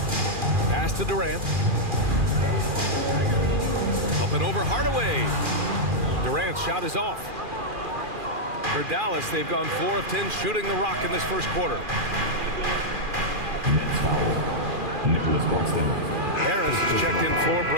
Pass to Durant. Up and over Hardaway. Durant's shot is off. For Dallas, they've gone 4 of 10 shooting the rock in this first quarter. Harris is checked in for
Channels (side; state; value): left; late; 2.4 ms